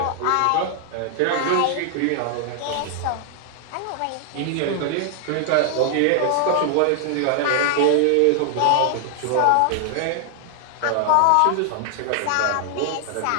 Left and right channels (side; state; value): both; different; correlation 0.00